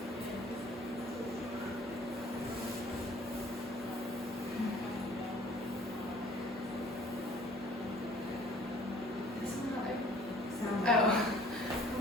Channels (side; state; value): both; normal; correlation 0.53